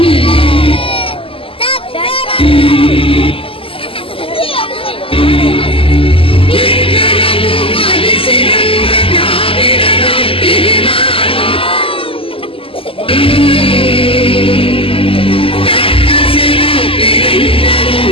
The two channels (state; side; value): late; right; 0.26 ms